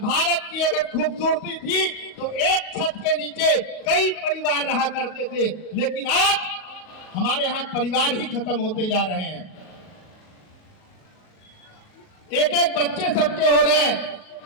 की अगर खूबसूरती थी तो एक छत के नीचे कई परिवार रहा करते थे, लेकिन आज हमारे यहाँ परिवार ही खत्म होते जा रहे हैं। एक एक बच्चे सबके हो रहे हैं।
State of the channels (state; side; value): late; right; 38 ms